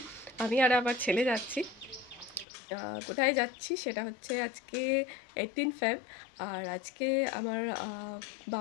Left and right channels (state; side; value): drops out; right; at 2.5 s